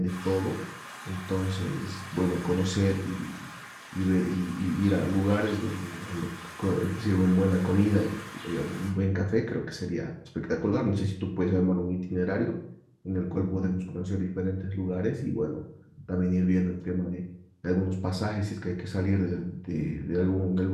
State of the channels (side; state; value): both; identical; correlation 1.00